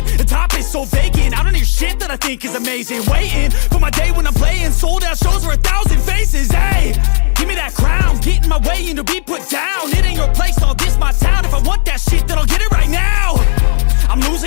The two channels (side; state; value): right; silent; digital silence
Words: the top is so vacant. I don't hear shit that I think is amazing. Waiting for my day when I'm playing sold out shows for 1,000 faces. Hey, give me that crown, get in my way and to be put down. It ain't your place, no, this my town. If I want that shit, then I'll get it right now. I'm